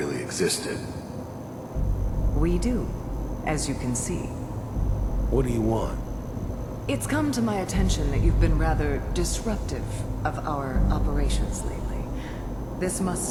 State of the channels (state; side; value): identical; both; correlation 1.00